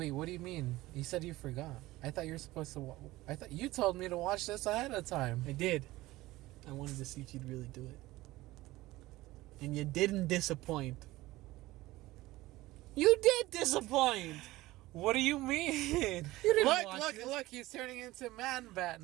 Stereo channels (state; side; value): quieter; left; 18.2 dB